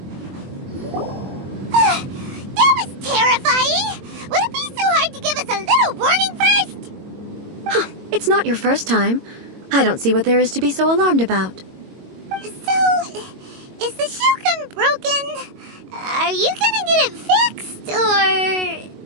It's not your first time. I don't see what there is to be so alarmed about. So, is the Shogun broken? Are you gonna get it fixed,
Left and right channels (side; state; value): left; late; 22 ms